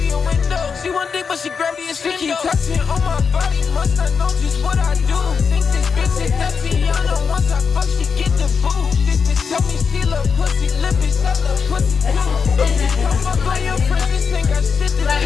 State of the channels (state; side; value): quieter; right; 5.8 dB